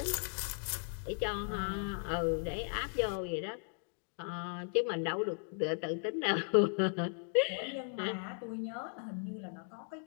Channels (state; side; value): silent; right; 53 dB below the other